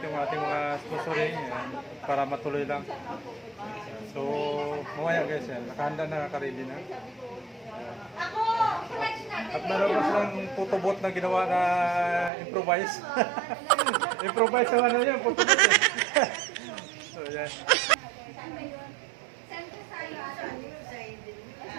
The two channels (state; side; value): drops out; left; at 12.3 s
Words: yung ating mga sponsoring para matuloy lang. So mamaya guys, nakahanda na, naka-ready na. At meron pa silang photobot na ginawa na improvise. Improvise naman na yun, photobot eh. So yan.